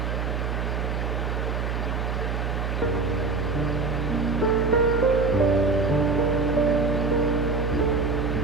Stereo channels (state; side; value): noise; right; hum, 1 dB below the sound